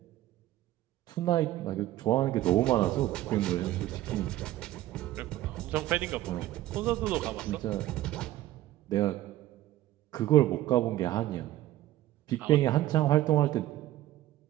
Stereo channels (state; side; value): quieter; left; 14.9 dB